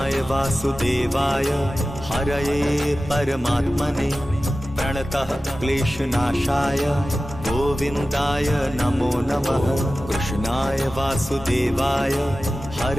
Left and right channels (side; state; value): both; normal; correlation 0.95